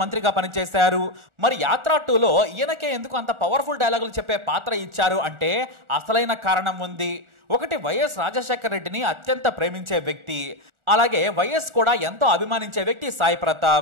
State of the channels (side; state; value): left; late; 1.4 ms